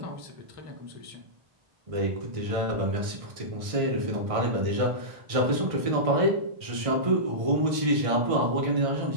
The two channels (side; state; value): left; late; 1.6 ms